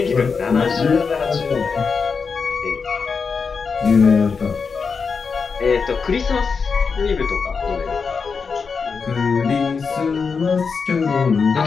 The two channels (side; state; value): right; quieter; 5.3 dB